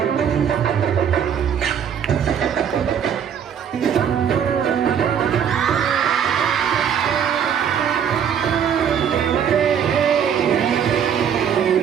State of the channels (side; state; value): left; quieter; 8.2 dB